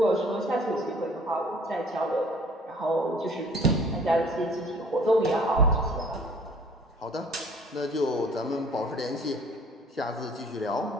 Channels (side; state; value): both; normal; correlation 0.53